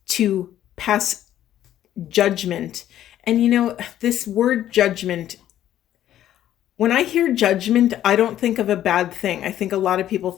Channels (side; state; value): right; quieter; 12.0 dB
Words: to pass judgment. And you know, this word judgment, when I hear judgment, I don't think of a bad thing. I think a lot of people